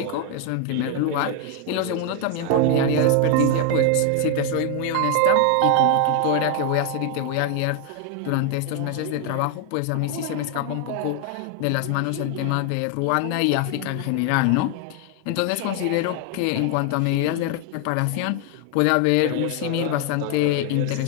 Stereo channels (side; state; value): both; different; correlation 0.01